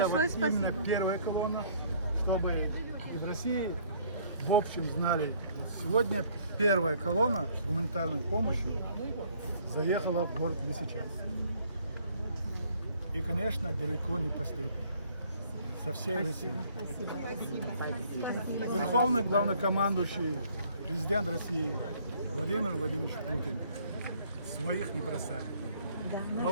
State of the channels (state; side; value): inverted; both; correlation -0.60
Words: вот именно спасибо. первая колонна, чтобы и в России в общем знали. Сегодня первая колонна с гуманитарной помощью заехала в город Лисичанск. И, конечно, далеко не последняя. Со всей России. Верховный главнокомандующий, президент России Владимир Владимирович Путин своих не бросает.